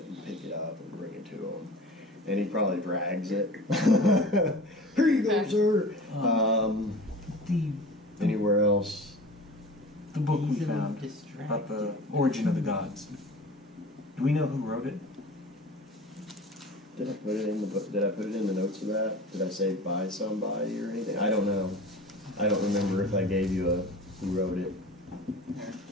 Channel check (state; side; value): normal; both; correlation 0.38